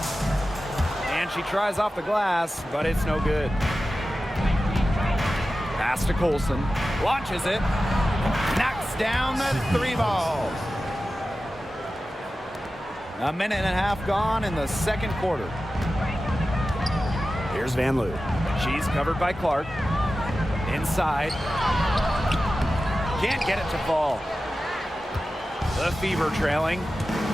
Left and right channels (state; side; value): normal; both; correlation 0.94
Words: And she tries off the glass, but it's no good. Pass to Colson. Launches it. Knocks down the 3 ball. A minute and a half gone in the second quarter. Here's Van Loo. She's covered by Clark. Inside. Can't get it to fall. The Fever trailing.